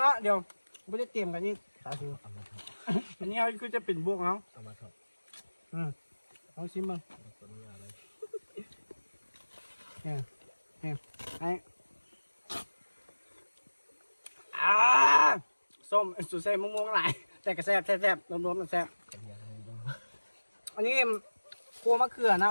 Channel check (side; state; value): both; inverted; correlation -1.00